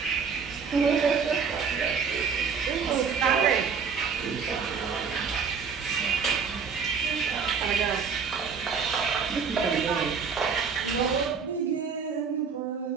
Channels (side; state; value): left; quieter; 5.9 dB